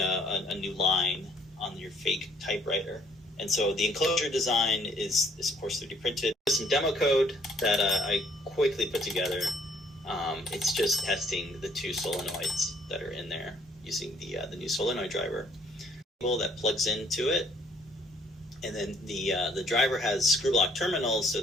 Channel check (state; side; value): normal; both; correlation 0.63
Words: new line on your fake typewriter. And so the enclosure design is of course 3D printed. There's some demo code that I quickly put together. It's just testing the two solenoids that are in there using the new Solenoid driver that plugs into it. And then the driver has screw block terminals, so